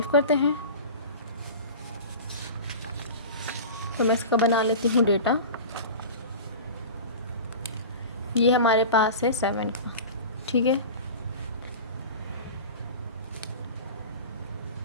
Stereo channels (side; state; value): both; inverted; correlation -0.33